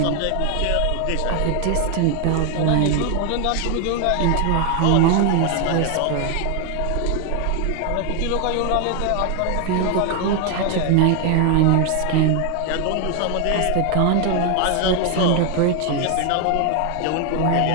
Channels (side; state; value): both; different; correlation 0.00